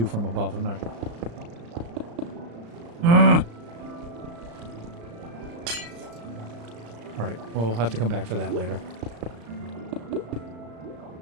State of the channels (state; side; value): late; left; 35 ms